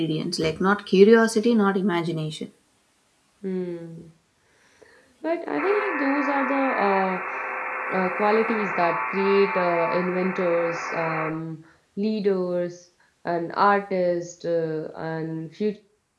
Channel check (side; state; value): both; identical; correlation 1.00